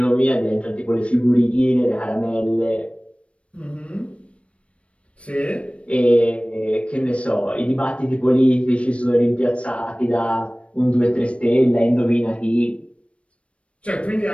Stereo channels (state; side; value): late; right; 0.061 ms